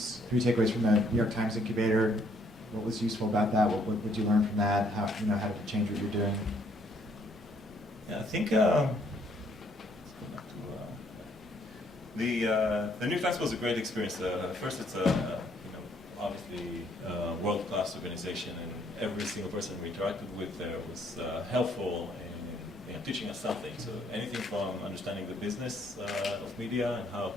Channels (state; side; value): normal; both; correlation 0.67